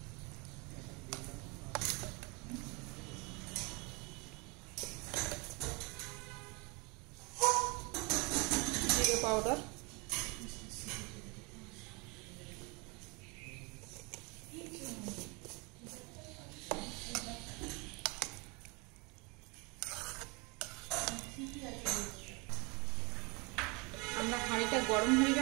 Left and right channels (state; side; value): quieter; left; 29.0 dB